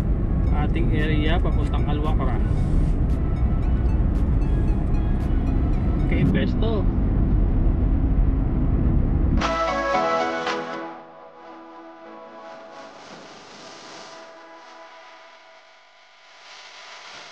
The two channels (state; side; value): identical; both; correlation 1.00